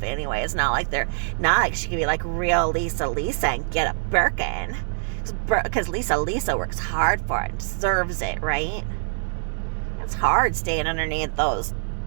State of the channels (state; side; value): silent; left; digital silence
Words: anyway. It's not like she can be like real Lisa and get a Birkin, because Lisa works hard for it and deserves it, right? It's hard staying underneath those